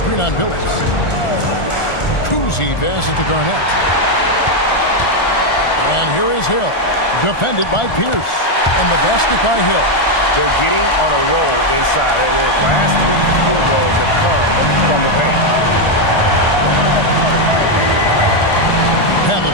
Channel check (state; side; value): late; right; 1.4 ms